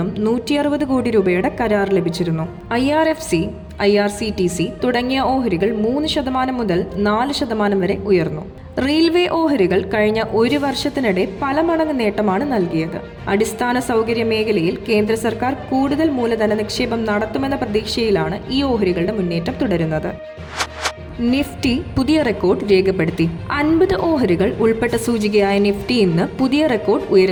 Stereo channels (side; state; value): both; identical; correlation 1.00